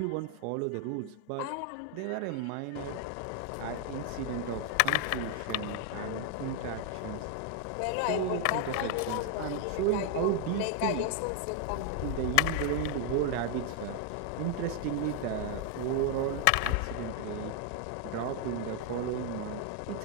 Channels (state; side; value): different; both; correlation 0.00